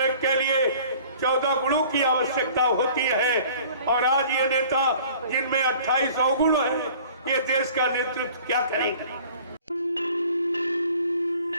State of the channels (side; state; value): both; inverted; correlation -0.49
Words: के लिए 14 गुणों की आवश्यकता होती है। और आज ये नेता जिनमें 28 अवगुण है, ये देश का नेतृत्व क्या करेंगे।